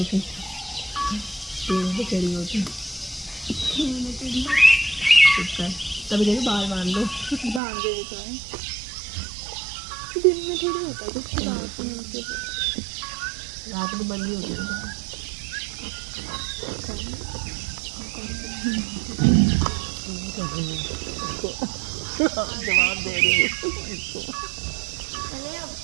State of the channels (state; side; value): drops out; left; at 7.6 s